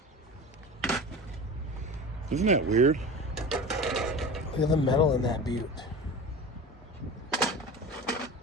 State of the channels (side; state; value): both; normal; correlation 0.33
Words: Isn't that weird? Look at the metal in that butte.